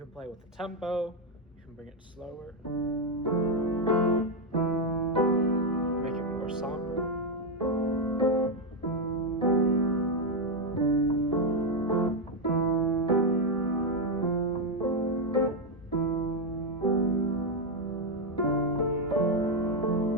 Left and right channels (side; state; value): both; normal; correlation 0.04